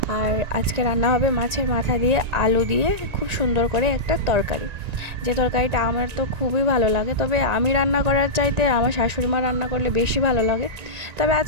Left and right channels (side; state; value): left; late; 1.9 ms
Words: আর আজকে রান্না হবে মাছের মাথা দিয়ে আলু দিয়ে খুব সুন্দর করে একটা তরকারি। যে তরকারিটা আমার তো খুবই ভালো লাগে, তবে আমি রান্না করার চাইতে আমার শাশুড়ি মা রান্না করলে বেশি ভালো লাগে। তবে